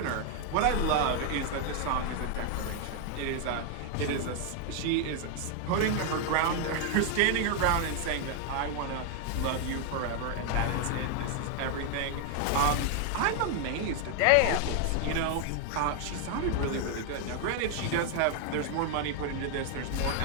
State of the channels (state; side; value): different; both; correlation 0.00